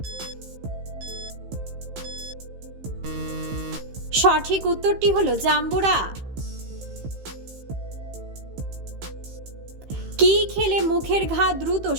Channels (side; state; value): left; late; 15 ms